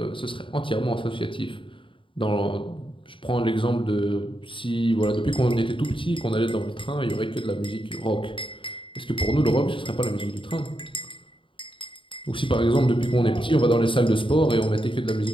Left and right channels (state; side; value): late; right; 0.25 ms